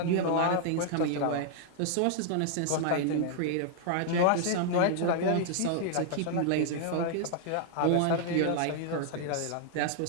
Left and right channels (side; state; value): both; different; correlation -0.01